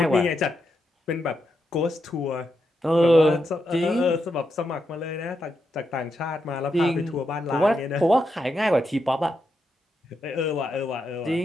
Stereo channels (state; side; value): normal; both; correlation 0.83